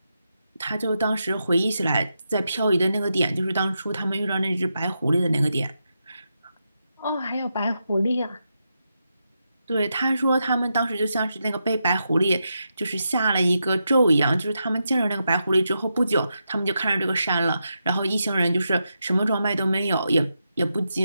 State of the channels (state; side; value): inverted; both; correlation -0.86